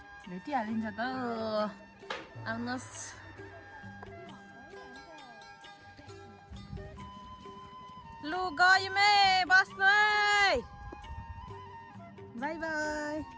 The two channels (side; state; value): both; identical; correlation 1.00